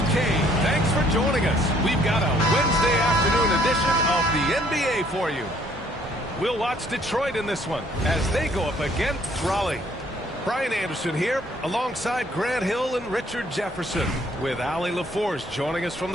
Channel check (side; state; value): both; normal; correlation 0.63